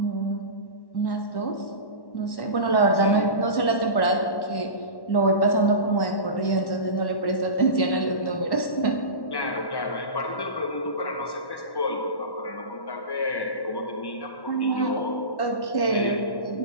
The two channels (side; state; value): right; late; 1.1 ms